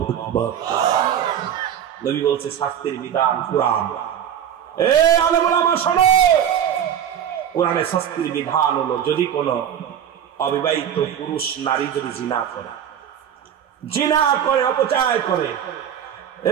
আকবার। নবী বলছে শাস্তির বিধান কোরআন। এ আলেম ওলামা শোনো, কোরআনের শাস্তির বিধান হলো যদি কোন অবিবাহিত পুরুষ নারী যদি জিনা করে অপচয় করে,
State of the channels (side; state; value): left; quieter; 9.3 dB